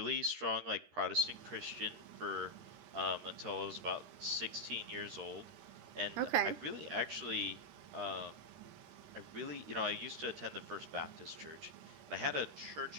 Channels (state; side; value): late; left; 13 ms